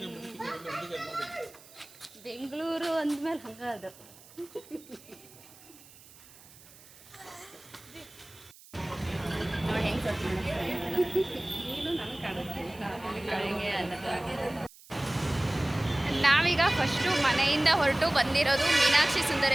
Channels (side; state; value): right; noise; hiss, 22 dB below the sound